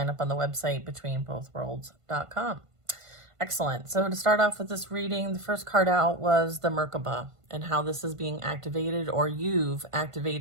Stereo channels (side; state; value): left; late; 1.5 ms